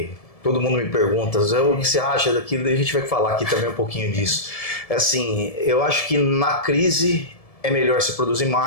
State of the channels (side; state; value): right; late; 1.7 ms